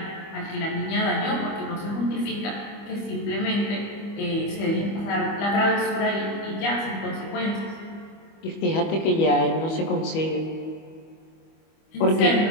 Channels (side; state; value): right; late; 25 ms